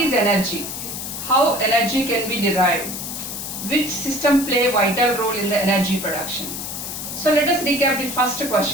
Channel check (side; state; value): left; noise; hiss, 6 dB below the sound